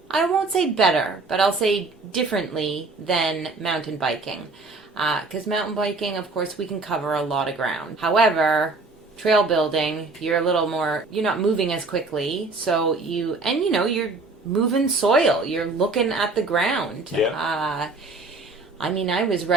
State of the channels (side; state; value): left; quieter; 3.6 dB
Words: I won't say better, but I'll say differently than mountain biking. Because mountain biking, of course, we can cover a lot of ground. However, trail building, you're not moving as quickly. So you're moving soil. You're looking at the ground. Yeah. I was